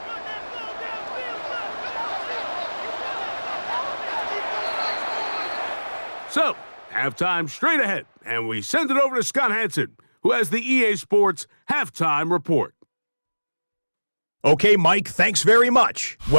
So, halftime straight ahead, and we send it over to Scott Hansen, who has the EA Sports Halftime Report. Okay, Mike, thanks very much.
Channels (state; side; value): inverted; both; correlation -1.00